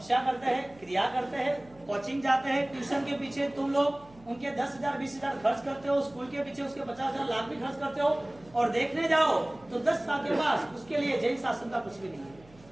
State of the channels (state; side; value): noise; right; hum, 25 dB below the sound